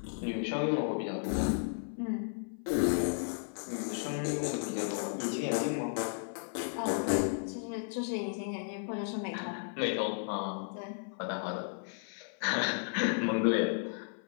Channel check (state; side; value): silent; right; 55 dB below the other